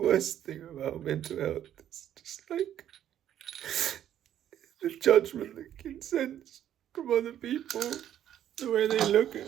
thing about mental health is just like the judgment that can sense from other people, the way they look at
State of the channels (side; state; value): left; quieter; 10.9 dB